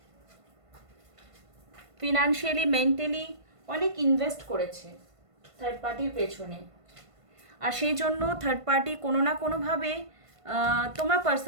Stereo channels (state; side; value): late; left; 1.5 ms